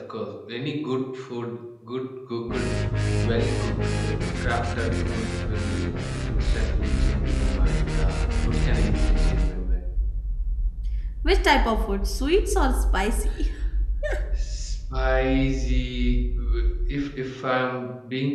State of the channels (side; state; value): both; identical; correlation 1.00